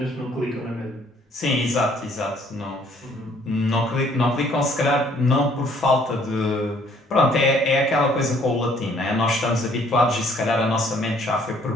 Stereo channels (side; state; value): both; normal; correlation 0.61